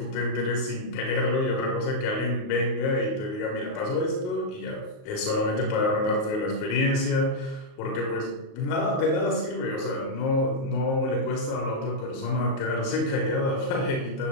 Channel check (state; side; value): late; right; 38 ms